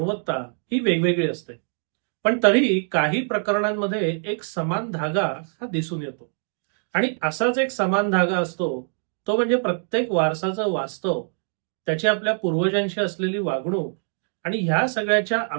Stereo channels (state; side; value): silent; left; 60 dB below the other